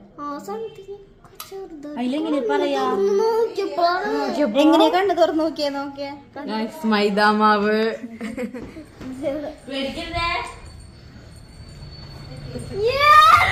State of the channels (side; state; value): both; identical; correlation 1.00